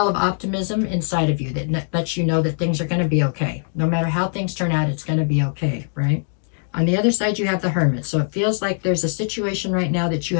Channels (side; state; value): right; silent; digital silence